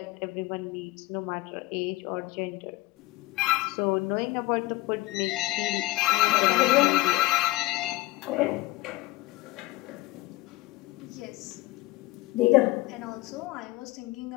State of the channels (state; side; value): quieter; right; 19.8 dB